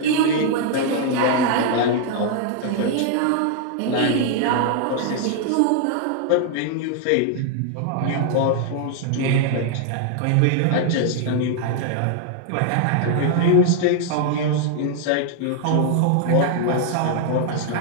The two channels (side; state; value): both; different; correlation 0.00